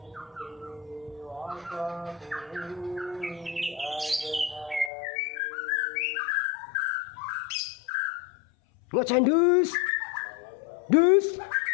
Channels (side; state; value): right; drops out; at 4.9 s